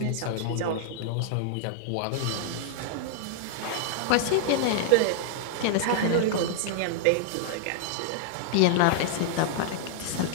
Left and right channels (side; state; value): both; different; correlation -0.01